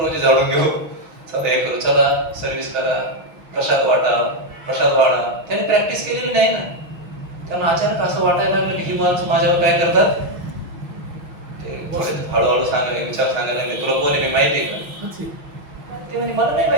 झाडून घेऊ, चला हे करू, चला सर्व्हिस करा, प्रसाद वाढा. त्याने प्रॅक्टिस केलेली नाही ना. त्यांना अचानक असं वाटायला लागलं की ही माणसं माझ्यावर काय करतात. ते हळूहळू सांगायला, विचार सांगायला लागले, तुला कोण आहे मी माहिती आहे का. ते म्हणजे मला नाही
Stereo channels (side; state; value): left; late; 6.1 ms